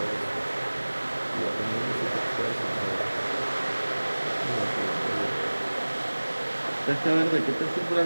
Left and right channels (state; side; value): inverted; both; correlation -1.00